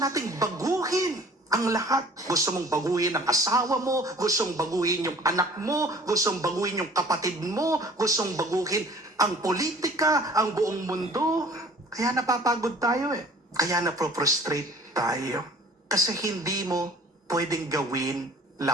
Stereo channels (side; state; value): both; normal; correlation 0.50